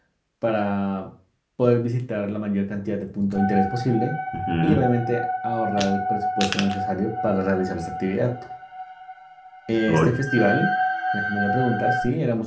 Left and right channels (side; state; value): both; identical; correlation 1.00